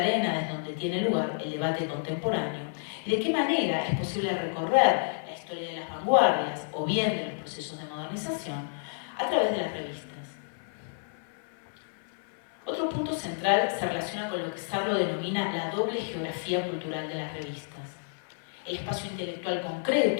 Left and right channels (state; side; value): silent; right; 58 dB below the other